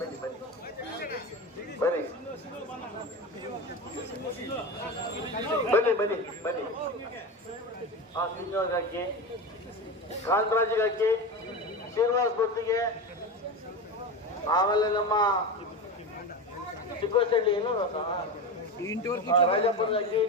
ಬನ್ನಿ ಬನ್ನಿ ಬನ್ನಿ ಬನ್ನಿ. ಶ್ರೀನಿವಾಸ್ ಹಾಕಿ, ಕಾಂತರಾಜಿಗೆ ಹಾಕಿ, ಶ್ರೀನಿವಾಸ್ ಭಕ್ತಿಗೆ, ಆಮೇಲೆ ನಮ್ಮ ಚಿಕ್ಕೋಸಳ್ಳಿ ಏನು ರಾಜಪ್ಪನ ಹಾಕಿ,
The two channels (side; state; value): both; normal; correlation 0.23